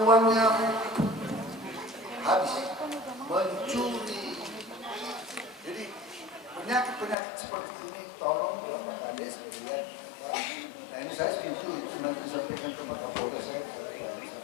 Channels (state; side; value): drops out; right; at 7.2 s